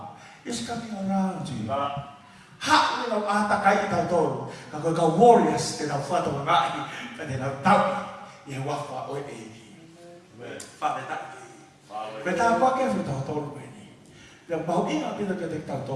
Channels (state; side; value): identical; both; correlation 1.00